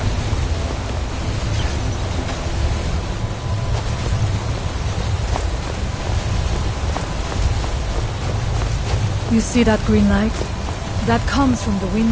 You see that green light? That comes from the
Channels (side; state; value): both; identical; correlation 1.00